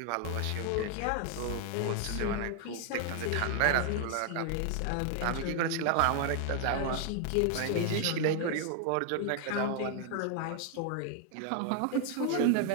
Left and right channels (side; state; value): both; different; correlation 0.00